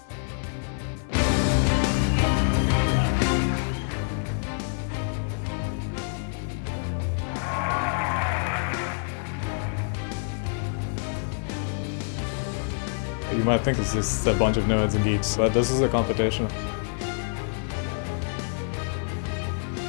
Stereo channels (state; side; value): silent; right; 60 dB below the other